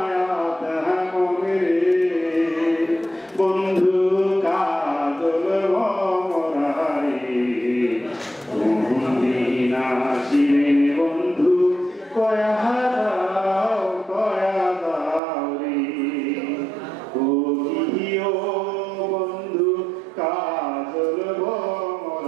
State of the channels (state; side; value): drops out; left; at 15.2 s